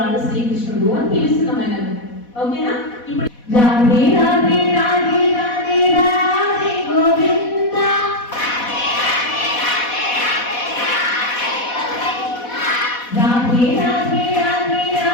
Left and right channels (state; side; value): late; right; 4.1 ms